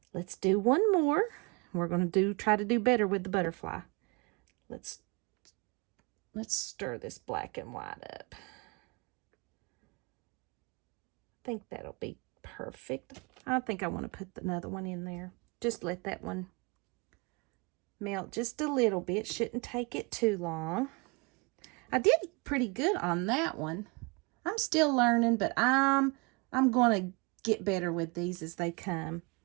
let's do one more. We're going to try to do better with the butterfly. Let's stir this black and white up. I think that'll be perfect. I think I want to put another one in there. Just let that one melt just a little bit. Shouldn't take it too long. I did pretty good on that one. I'm still learning, but I'm going to get better with these as they come.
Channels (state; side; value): quieter; left; 29.0 dB